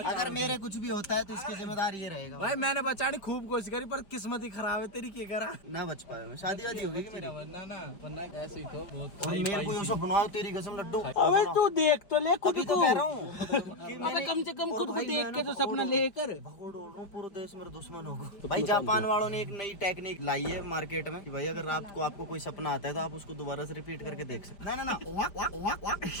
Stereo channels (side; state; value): right; late; 5.1 ms